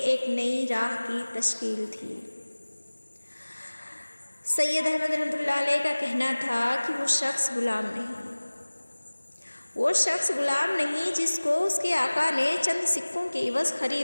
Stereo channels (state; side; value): inverted; both; correlation -1.00